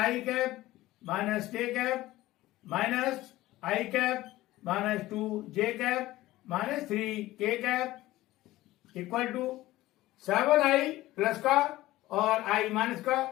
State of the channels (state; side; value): quieter; right; 16.9 dB